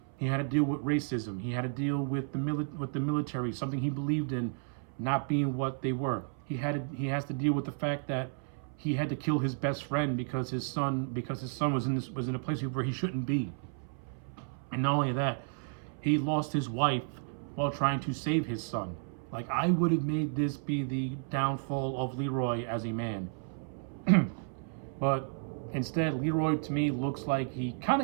He had to deal with racism. He had to deal with the military, something he believed in, not being what they were. He has to deal with the fact that he had to kill his best friend because his son was in a place where he shouldn't be. And not only that, he lost his wife while trying to save his son. Like, I would have made this be the downfall of Leroy as a man. But instead, Leroy to me looks like he kind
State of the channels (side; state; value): left; silent; 56 dB below the other